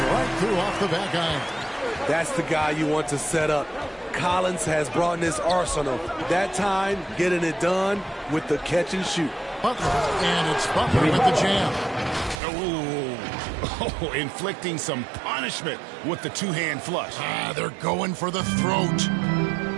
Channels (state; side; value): drops out; left; at 12.4 s